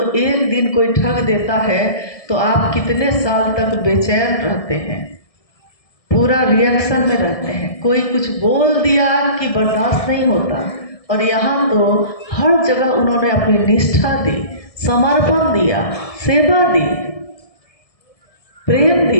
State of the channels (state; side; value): late; right; 1.7 ms